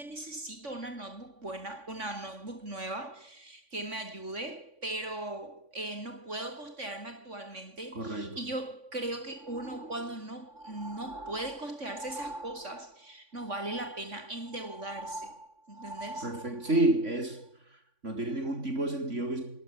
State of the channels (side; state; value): left; late; 3.5 ms